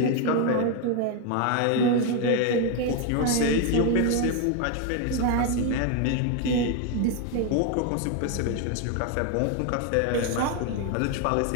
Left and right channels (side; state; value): both; different; correlation 0.01